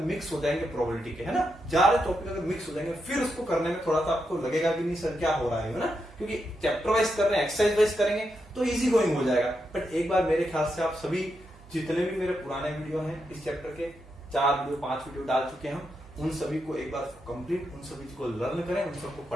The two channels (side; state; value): right; noise; hum, 23 dB below the sound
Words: मिक्स हो जाएंगे प्रोबेबिलिटी के, है ना, ज्यादा टॉपिक अगर मिक्स हो जाएंगे, फिर उसको करने में थोड़ा सा आपको लगेगा कि नहीं सर क्या हो रहा है ना, क्योंकि चैप्टर वाइज कर रहे हैं, एक्सरसाइज वाइज करेंगे तो इजी गोइंग हो जाएगा। बट एक बार मेरे ख्याल से आप सभी जितने भी मेरे पुराने वीडियो हैं इस चैप्टर के, 4 वीडियो 5 वीडियो डाल चुके हैं हम, उन सभी को एक बार कंप्लीट, उन सभी को लर्न करें, उन सबको